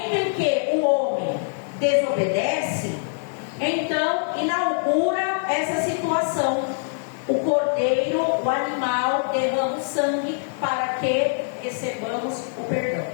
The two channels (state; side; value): silent; right; digital silence